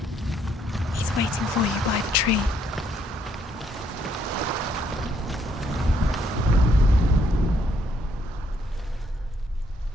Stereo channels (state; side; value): normal; both; correlation 0.70